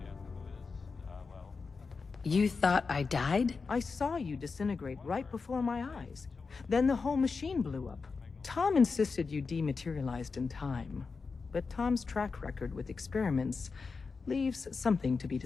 You thought I died? I saw you disintegrate right before my eyes. Then the whole machine blew up. Tom insisted you dematerialized in time. But Tom's track record with experiments leaves something to be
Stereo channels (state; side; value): quieter; right; 4.7 dB